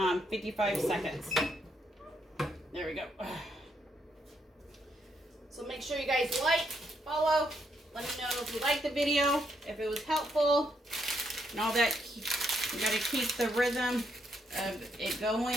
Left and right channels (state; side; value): normal; both; correlation 0.76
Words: 55 seconds. There we go. So make sure you guys like, follow, let me know if you liked the video, if it was helpful, and all that. You gotta keep the rhythm of it